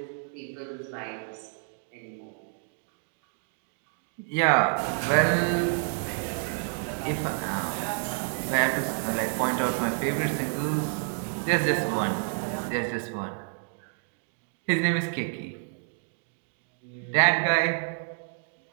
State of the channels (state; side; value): silent; left; 59 dB below the other